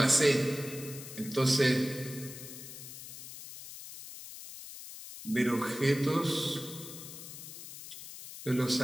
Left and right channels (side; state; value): left; noise; hiss, 12 dB below the sound